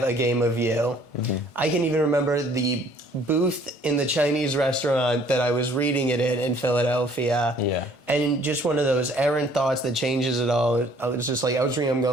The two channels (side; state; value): right; late; 1.6 ms